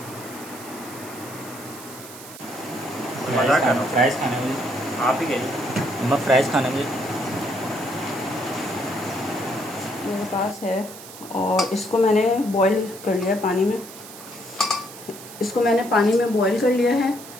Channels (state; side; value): noise; right; hiss, 15 dB below the sound